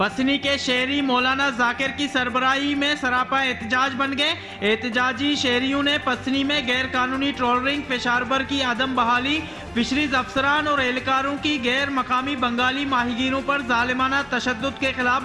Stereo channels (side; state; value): both; identical; correlation 1.00